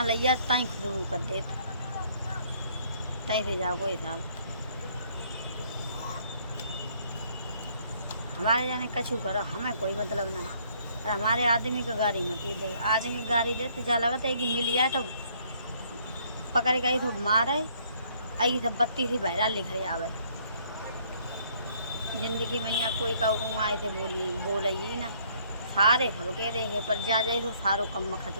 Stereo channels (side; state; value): both; inverted; correlation -0.64